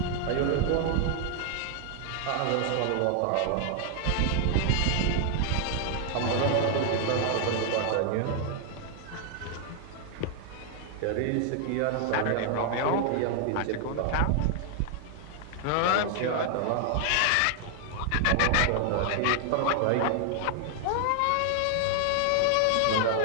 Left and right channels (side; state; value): both; different; correlation 0.00